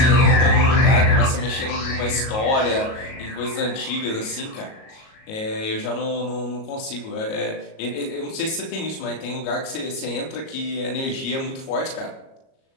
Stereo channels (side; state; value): right; late; 37 ms